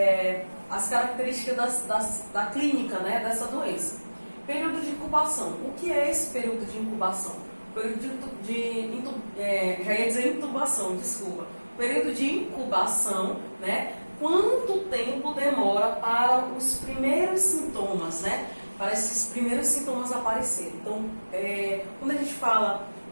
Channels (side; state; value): both; inverted; correlation -1.00